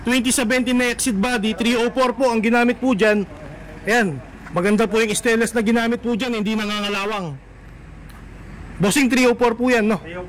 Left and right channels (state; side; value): identical; both; correlation 1.00